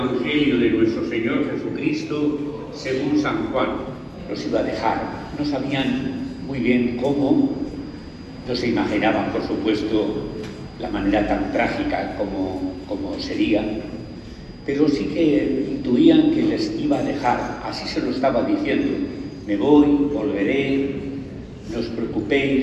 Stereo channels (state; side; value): identical; both; correlation 1.00